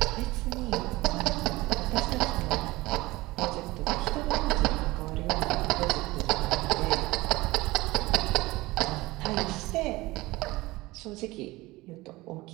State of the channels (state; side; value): quieter; left; 20.2 dB